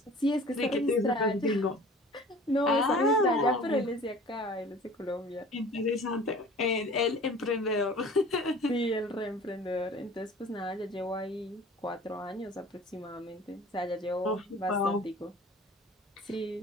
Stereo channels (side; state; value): both; normal; correlation 0.45